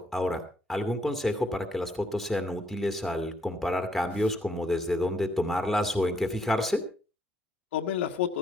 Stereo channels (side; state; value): both; normal; correlation 0.70